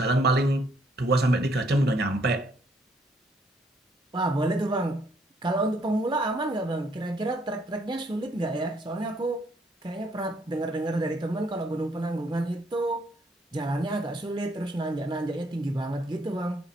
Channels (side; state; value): both; normal; correlation 0.68